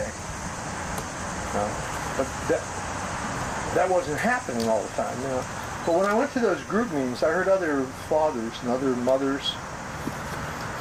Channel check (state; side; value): identical; both; correlation 1.00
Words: But that wasn't happening all the time. You know? But when I went to those group meetings, I heard other fathers and other mothers